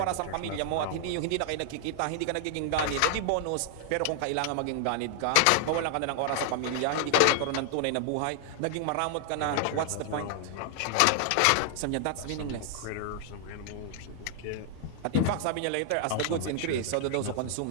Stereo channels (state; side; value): different; both; correlation 0.00